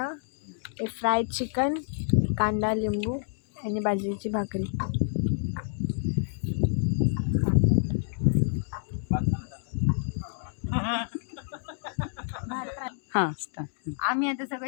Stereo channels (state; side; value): silent; right; digital silence